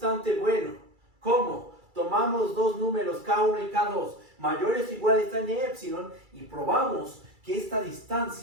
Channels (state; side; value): late; left; 2.3 ms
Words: bueno. ¿Cómo? Tomamos dos números k1 y k2 mayores o iguales a n epsilon y probamos que esta